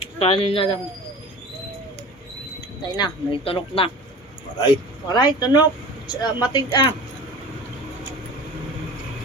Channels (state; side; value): normal; both; correlation 0.38